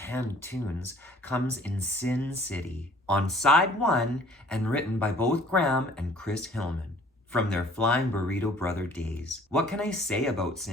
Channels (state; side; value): normal; both; correlation 0.54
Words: tunes comes in Sin City, on side 1 and written by both Graham and Chris Hillman from their Flying Burrito Brother days. What can I say about